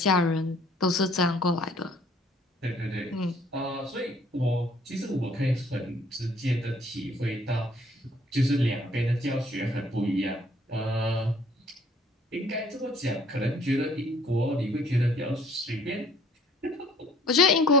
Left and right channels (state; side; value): normal; both; correlation 0.58